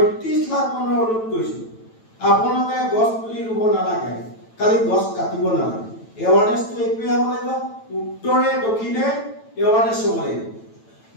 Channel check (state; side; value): late; right; 9.0 ms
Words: লাখ মানুহৰ অনুৰোধ কৰিছোঁ, আপোনালোকে গছ পুলি ৰুব নালাগে, খালি গছ কাটিব নালাগে। এৱাৰনেছটো এইটোৱে হ'ব লাগিব, উত্তৰে দক্ষিণে এৱাৰনেছ হ'ব লাগিব।